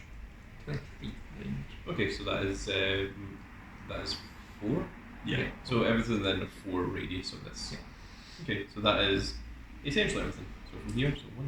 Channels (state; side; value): identical; both; correlation 1.00